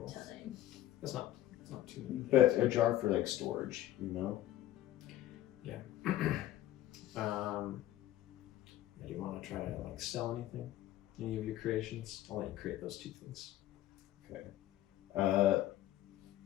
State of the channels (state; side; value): quieter; right; 13.9 dB